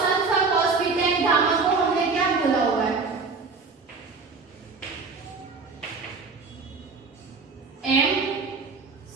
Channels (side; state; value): left; quieter; 4.5 dB